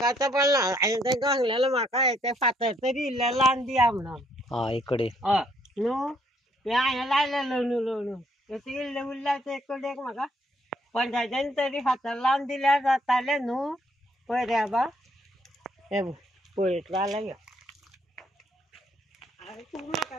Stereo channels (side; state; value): both; normal; correlation 0.69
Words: आतां पडना. हांवें तांकां सांगलेलें म्हाका ते फातर तरी इल्लें लावन दिया म्हणून. इकडे हय न्हू हे हांवें लायलेलो न्हू तशें इल्लें उरल्यार ते कडेक म्हाका पंचायतीन तरी फातर लावन दिल्यार जातालें न्हू. पळय रे बाबा हे पळयतलो जाल्यार यो. आरे तूं म्हाका